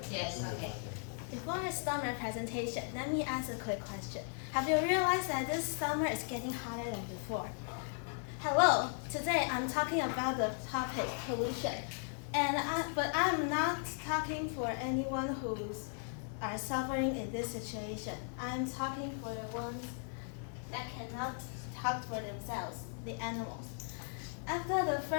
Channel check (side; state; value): right; silent; 53 dB below the other